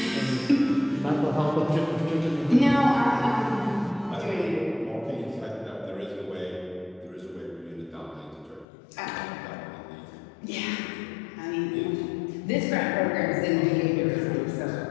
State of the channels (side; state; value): right; drops out; at 8.7 s